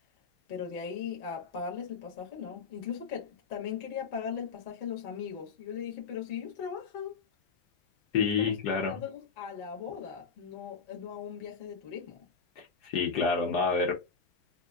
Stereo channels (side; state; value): right; quieter; 5.3 dB